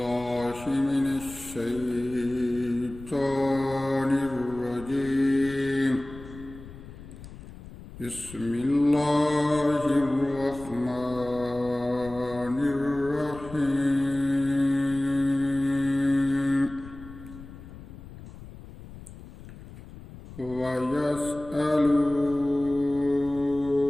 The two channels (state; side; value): noise; left; rumble, 16 dB below the sound